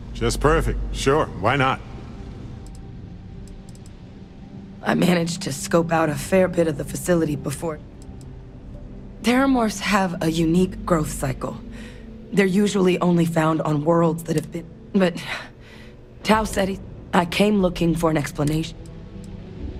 just perfect. Sure, why not? I managed to scope out a fair bit of the facility before. Terramorphs have a unique growth cycle. They're usually only found on worlds that have been... But... Tau said I came looking for an explanation.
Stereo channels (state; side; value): identical; both; correlation 1.00